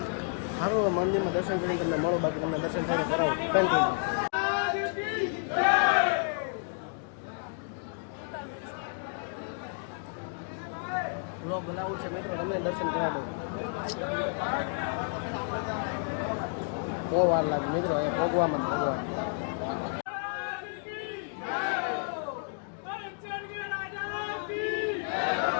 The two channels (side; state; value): right; silent; 57 dB below the other